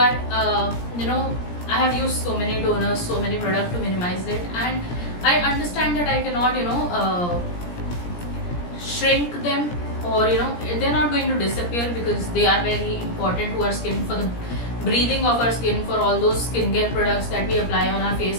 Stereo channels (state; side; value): late; right; 17 ms